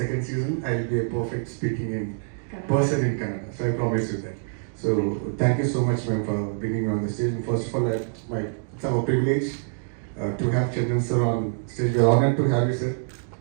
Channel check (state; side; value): silent; left; digital silence